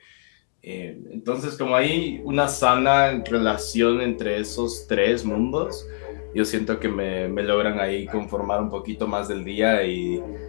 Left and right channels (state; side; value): silent; right; digital silence